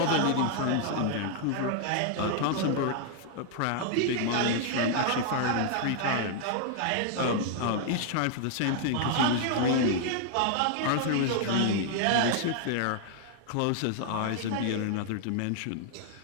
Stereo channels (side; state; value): both; different; correlation 0.00